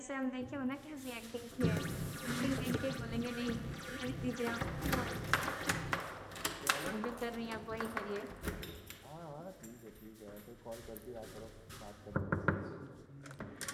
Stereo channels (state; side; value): identical; both; correlation 1.00